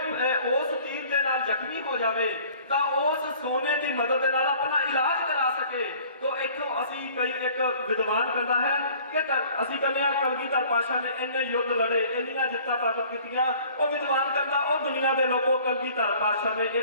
ਤੀਰ ਦੇ ਨਾਲ ਜ਼ਖਮੀ ਹੋ ਜਾਵੇ ਤਾਂ ਉਸ ਸੋਨੇ ਦੀ ਮਦਦ ਦੇ ਨਾਲ ਆਪਣਾ ਇਲਾਜ ਕਰਾ ਸਕੇ। ਤਾਂ ਇੱਥੋਂ ਅਸੀਂ ਕਈ ਇੱਕ ਵਿਦਵਾਨ ਕਹਿੰਦਾ ਹੈ ਕਿ ਅਸੀਂ ਕਹਿੰਦੇ ਹਾਂ ਕਲਗੀਧਰ ਪਾਤਸ਼ਾਹ ਨੇ ਇੰਨੇ ਯੁੱਧ ਲੜੇ ਇੰਨੀਆਂ ਜਿੱਤਾਂ ਪ੍ਰਾਪਤ ਕੀਤੀਆਂ। ਉਹ ਵਿਦਵਾਨ ਕਹਿੰਦਾ ਉਹ ਦੁਨੀਆ ਦੇ ਲੋਕੋ ਕਲਗੀਧਰ ਪਾਤਸ਼ਾਹ ਨੇ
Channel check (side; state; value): both; inverted; correlation -0.51